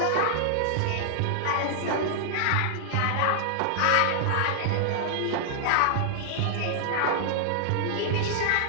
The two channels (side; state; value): both; different; correlation -0.01